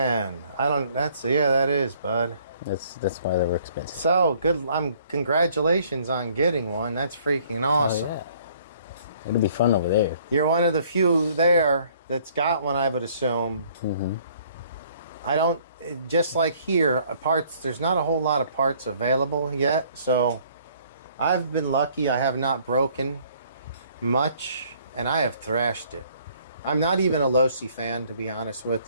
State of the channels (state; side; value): inverted; both; correlation -0.60